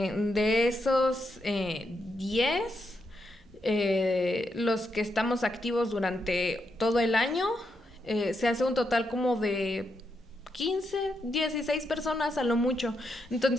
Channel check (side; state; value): both; normal; correlation 0.82